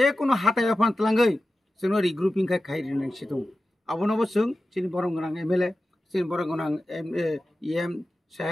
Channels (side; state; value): both; normal; correlation 0.93